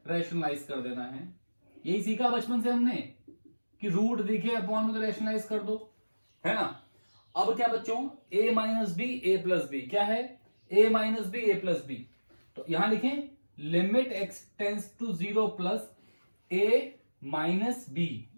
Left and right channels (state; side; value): inverted; both; correlation -1.00